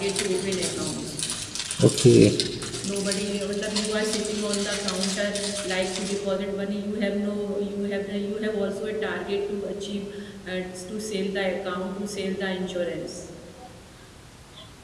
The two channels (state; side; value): identical; both; correlation 1.00